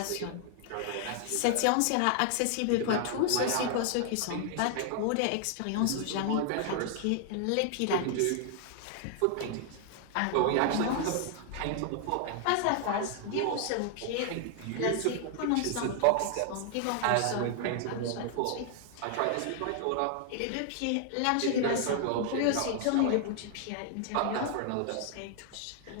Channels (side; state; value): both; different; correlation 0.00